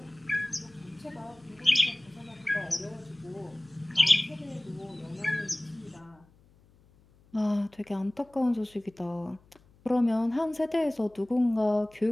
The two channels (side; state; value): left; noise; hum, 29 dB below the sound